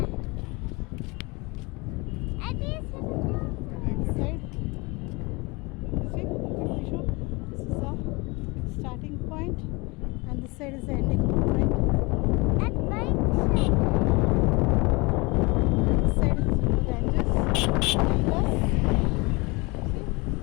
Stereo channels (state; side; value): quieter; right; 26.2 dB